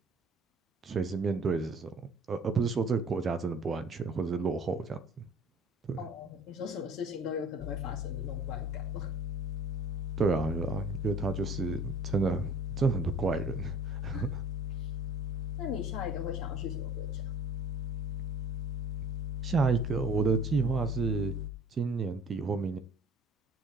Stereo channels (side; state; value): both; normal; correlation 0.48